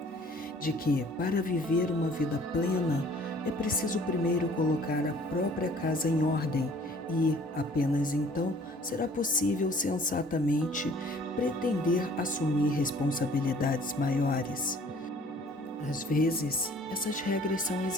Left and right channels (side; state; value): both; normal; correlation 0.54